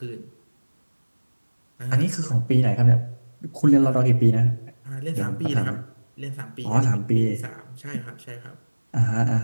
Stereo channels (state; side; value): inverted; both; correlation -1.00